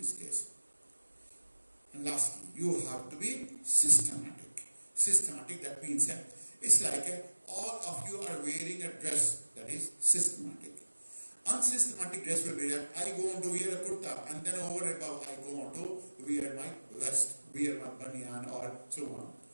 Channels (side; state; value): both; inverted; correlation -1.00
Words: case. And lastly, you have to be systematic. Systematic, that means it's like all of you are wearing a dress that is systematic. Unsystematic dress will be that I go on to wear a kurta and then over above I go on to wear my vest, wear my banyan or so on.